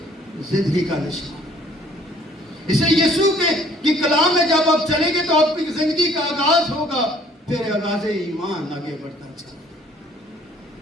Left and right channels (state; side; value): normal; both; correlation 0.57